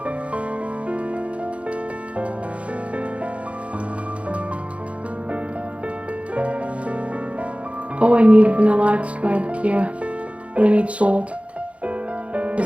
Oh, I need vanilla extract here. But I need salt.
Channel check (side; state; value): left; late; 0.063 ms